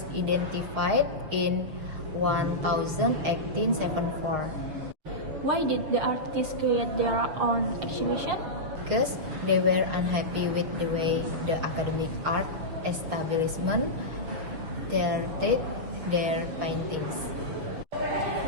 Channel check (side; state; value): left; late; 6.8 ms